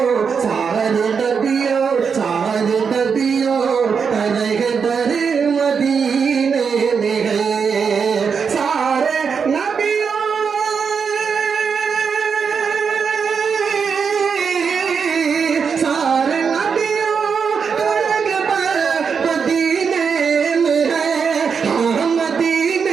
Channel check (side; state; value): left; quieter; 6.1 dB